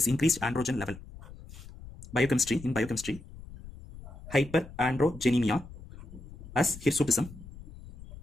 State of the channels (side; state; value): left; noise; rumble, 16 dB below the sound